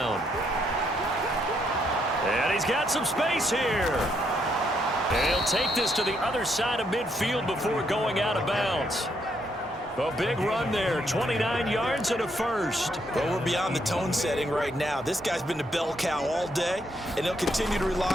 And he's got some space here. And he'll take this to the other side of midfield before going out of bounds. A big run there, 29 yards and a first. Well, we're beyond the tone setting right now. This guy's been the bell cow all day, and they'll continue to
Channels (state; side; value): normal; both; correlation 0.75